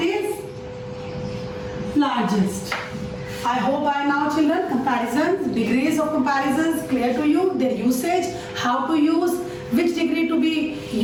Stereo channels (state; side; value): identical; both; correlation 1.00